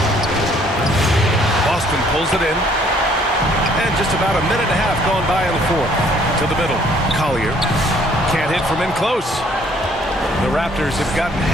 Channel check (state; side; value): normal; both; correlation 0.61